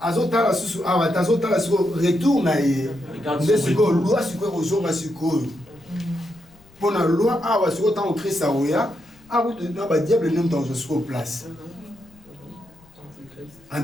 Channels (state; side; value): noise; left; rumble, 28 dB below the sound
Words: Azotala susu awa tazotala siko retour na ye ndesiko loi siko kozonga siko pona loi awa siko tant Christ aoya awu na ba diable nem dans siko place